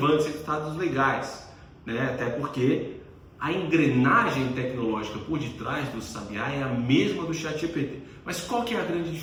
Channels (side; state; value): both; identical; correlation 1.00